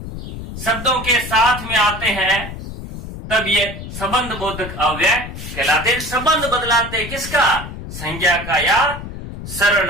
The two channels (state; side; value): noise; left; rumble, 10 dB below the sound